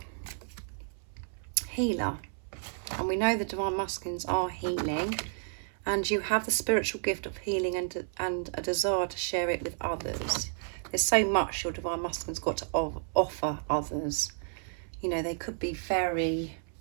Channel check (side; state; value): left; silent; 57 dB below the other